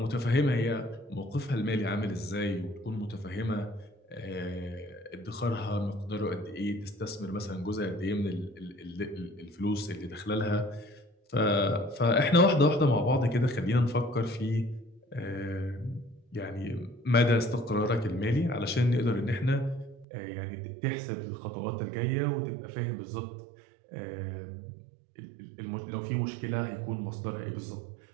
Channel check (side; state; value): left; drops out; at 20.1 s